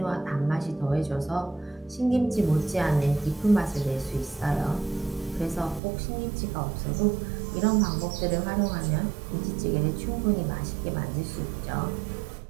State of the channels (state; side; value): drops out; left; at 5.8 s